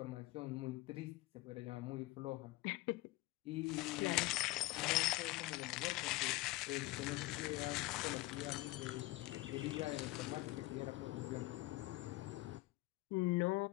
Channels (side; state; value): right; quieter; 19.9 dB